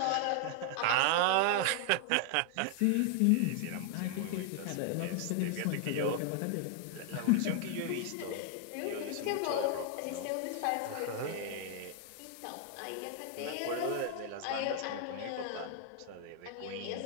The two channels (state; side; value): different; both; correlation 0.00